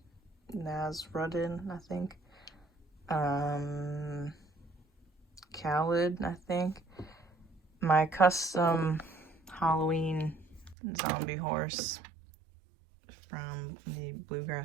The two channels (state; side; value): drops out; left; at 10.8 s